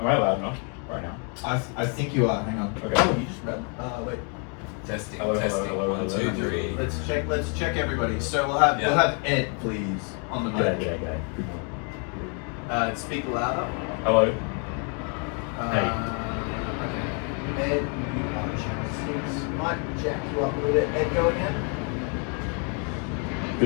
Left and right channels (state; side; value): quieter; right; 38.6 dB